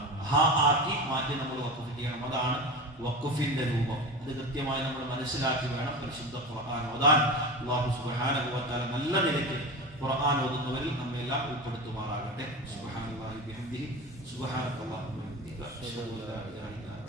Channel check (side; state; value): both; normal; correlation 0.27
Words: ഹ ആക്കി മാറ്റി നമ്മൾ വഖഫ് ചെയ്യണം. അതാണ് വഖഫിന്റെ രൂപം. ഇത് കൃത്യമായി നമ്മൾ മനസ്സിലാക്കി വേണം പരിശുദ്ധ ഖുർആൻ ഓതാൻ. അല്ലാഹു സുബ്ഹാനഹു വ തആല നല്ല നിലയ്ക്ക് ഖുർആൻ ഓതുന്നവരിൽ നമ്മെല്ലാം ഉൾപ്പെടുത്തുമാറാകട്ടെ. സുബ്ഹാനല്ലാഹി ബിഹംദിഹി സുബ്ഹാനക്കല്ലാഹു വബിഹംദിക അഷ്ഹദു അല്ലാ ഇലാഹ ഇല്ല അൻത